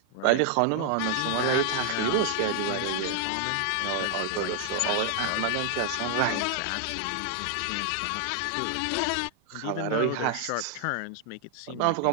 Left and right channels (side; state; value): both; different; correlation 0.00